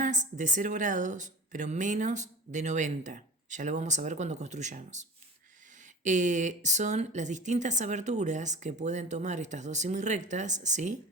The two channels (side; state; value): both; normal; correlation 0.36